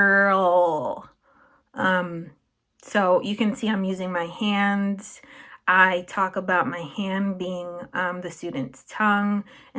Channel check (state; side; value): identical; both; correlation 1.00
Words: So you can see I'm using my hands. I talk about my hand being the student's tongue